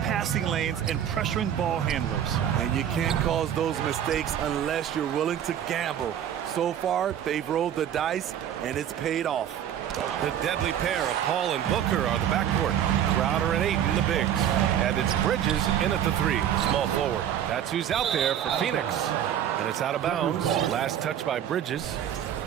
lanes and pressuring ball handlers. And you can't cause those mistakes unless you're willing to gamble. So far, they've rolled the dice, and it's paid off. The deadly pair of Paul and Booker are the backcourt. Crowder and Ayton, the bigs. And it's Bridges in at the 3, small forward. That's who's out there for Phoenix. And it's out of bounds. Last touch by Bridges.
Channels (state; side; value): quieter; left; 10.0 dB